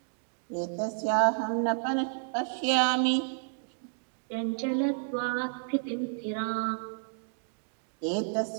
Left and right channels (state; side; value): silent; left; digital silence